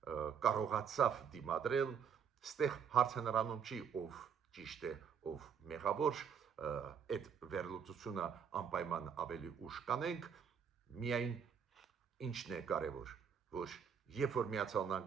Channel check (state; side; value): quieter; left; 7.2 dB